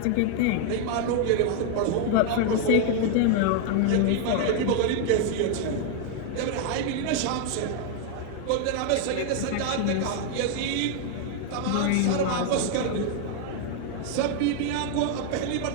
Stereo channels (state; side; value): different; both; correlation 0.00